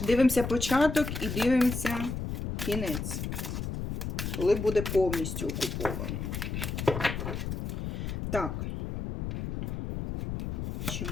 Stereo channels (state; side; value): noise; left; rumble, 4 dB below the sound